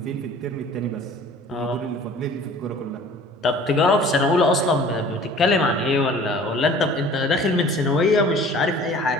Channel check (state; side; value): normal; both; correlation 0.47